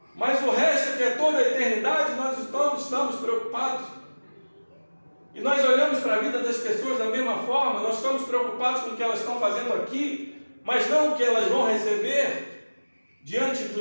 mas o resto, que é toda a eternidade, nós estamos preocupados. E nós olhamos para a vida das pessoas da mesma forma, nós estamos preocupados com o que elas estão fazendo aqui, mas não o que elas vão receber diante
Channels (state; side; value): inverted; both; correlation -1.00